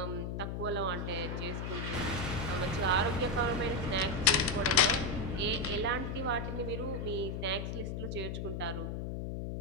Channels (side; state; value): left; noise; hum, 4 dB below the sound